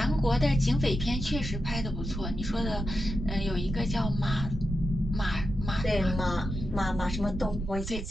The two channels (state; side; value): noise; right; rumble, 5 dB below the sound